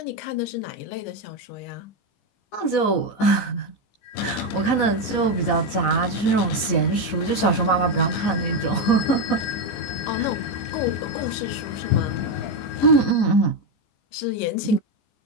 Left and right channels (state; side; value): late; right; 15 ms